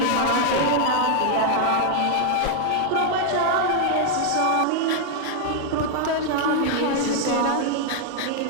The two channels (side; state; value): both; different; correlation 0.00